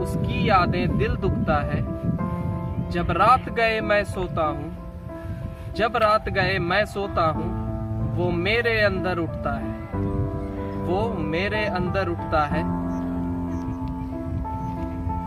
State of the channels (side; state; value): both; identical; correlation 1.00